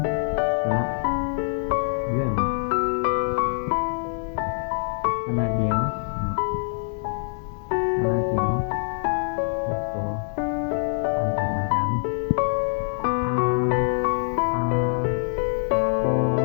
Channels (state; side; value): silent; right; digital silence